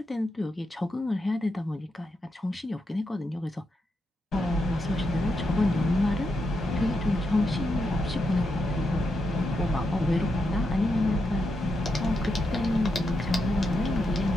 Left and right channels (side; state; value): both; normal; correlation 0.84